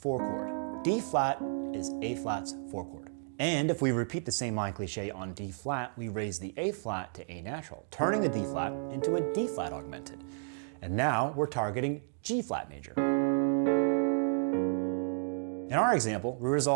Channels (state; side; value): silent; left; digital silence